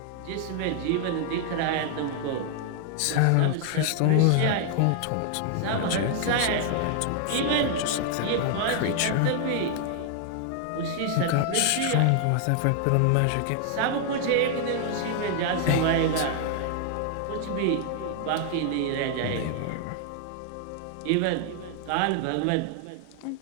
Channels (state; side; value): different; both; correlation 0.00